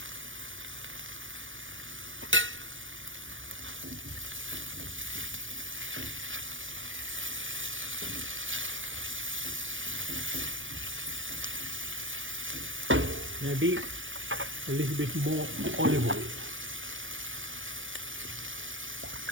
Maybe a little bit more olive oil.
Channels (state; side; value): late; left; 0.57 ms